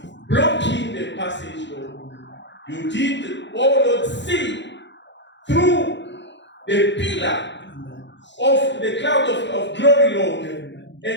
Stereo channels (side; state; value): right; late; 0.52 ms